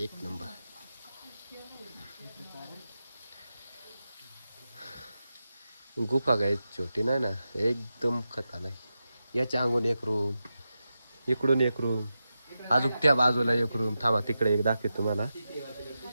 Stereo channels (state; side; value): inverted; both; correlation -0.90